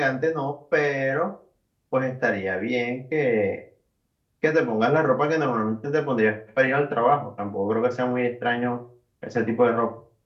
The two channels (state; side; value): identical; both; correlation 1.00